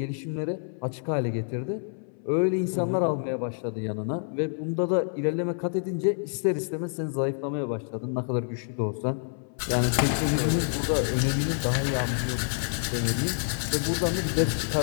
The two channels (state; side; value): silent; right; 60 dB below the other